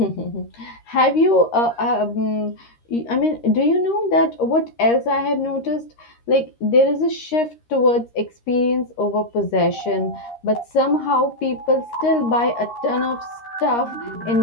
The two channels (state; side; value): late; right; 13 ms